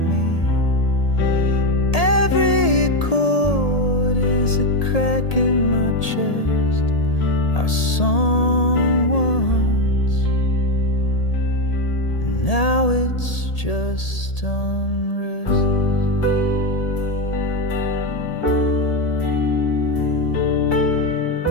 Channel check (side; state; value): right; late; 1.8 ms